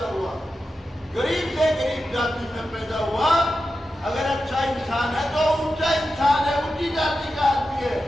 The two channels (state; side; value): normal; both; correlation 0.91